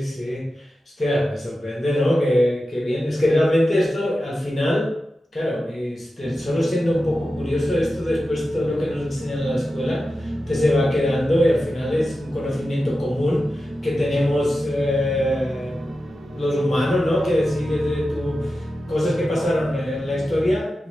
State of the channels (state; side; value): normal; both; correlation 0.92